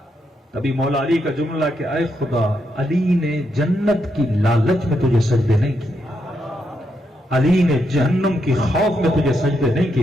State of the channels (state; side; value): normal; both; correlation 0.81